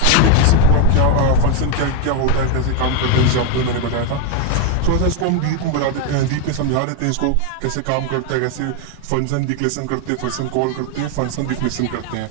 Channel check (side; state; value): both; different; correlation 0.01